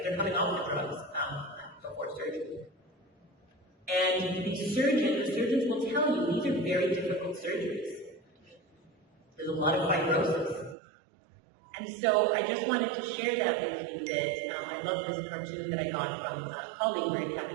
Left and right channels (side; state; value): left; drops out; at 10.8 s